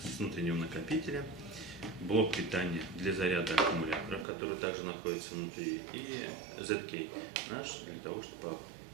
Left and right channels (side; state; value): left; drops out; at 4.2 s